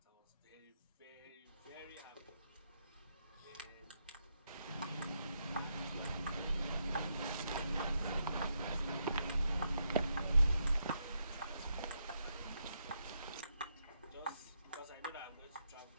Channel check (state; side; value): inverted; both; correlation -0.80